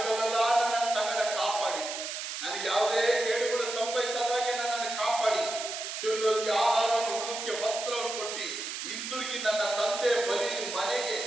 ನನ್ನ ಸಂಗಡ ಕಾಪಾಡಿ, ನನಗೆ ಯಾವುದೇ ಕೇಡುಗಳು ಸಂಭವಿಸದಾಗೆ ನನ್ನನ್ನು ಕಾಪಾಡಿ ತಿನ್ನುವುದಕ್ಕೆ ಆಹಾರವನ್ನು, ಉಡುವುದಕ್ಕೆ ವಸ್ತ್ರವನ್ನು ಕೊಟ್ಟು ಹಿಂದಿರುಗಿ ನನ್ನ ತಂದೆ ಮನೆಗೆ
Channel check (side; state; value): right; noise; hiss, 6 dB below the sound